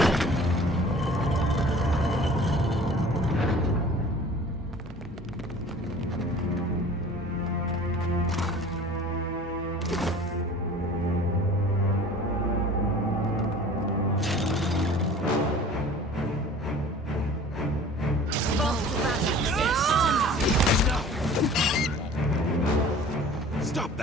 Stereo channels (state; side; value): normal; both; correlation 0.45